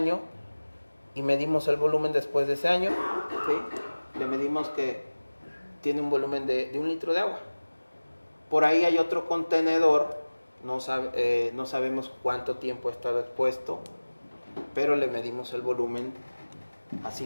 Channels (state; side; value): inverted; both; correlation -1.00